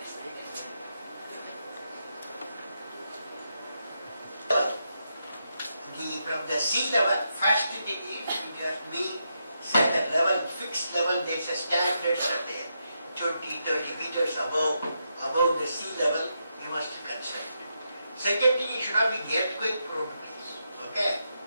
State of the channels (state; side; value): inverted; both; correlation -0.83